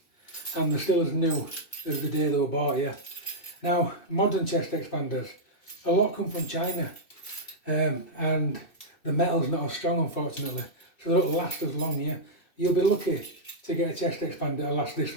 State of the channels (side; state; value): right; late; 2.6 ms